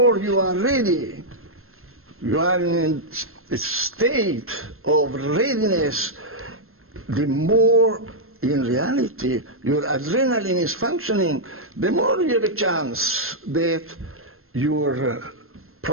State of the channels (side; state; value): left; late; 0.62 ms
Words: you are ready, you are in a state of readiness, the more in reality your adrenaline is functioning, the more you have a chance that your